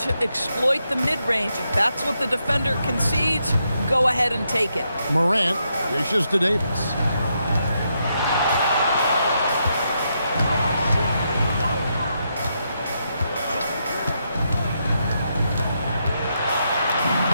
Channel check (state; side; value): inverted; both; correlation -0.81